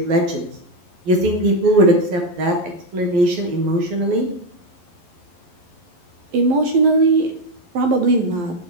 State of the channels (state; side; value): late; left; 11 ms